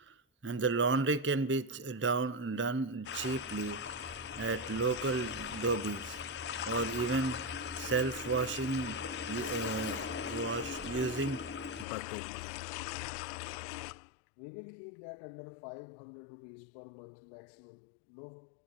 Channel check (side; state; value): right; drops out; at 11.9 s